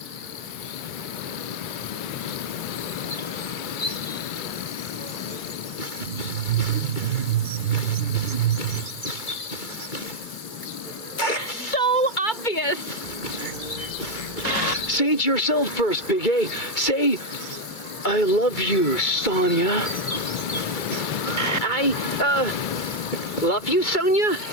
So obvious! Say it yourself first, Big A. Say, I love you, Sonia. Love you, Sonia?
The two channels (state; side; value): late; right; 2.2 ms